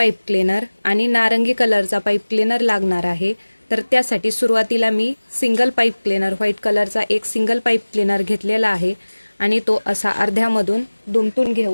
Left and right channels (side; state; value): both; inverted; correlation -1.00